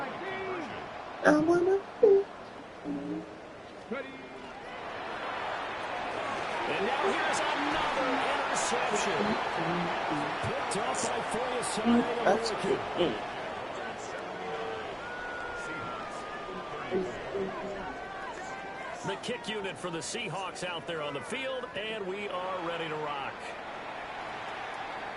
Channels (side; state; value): both; identical; correlation 1.00